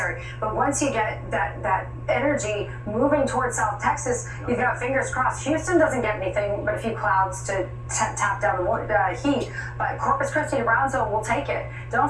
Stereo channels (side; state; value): both; identical; correlation 1.00